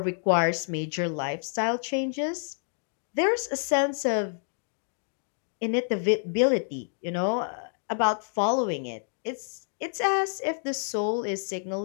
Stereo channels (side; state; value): right; silent; digital silence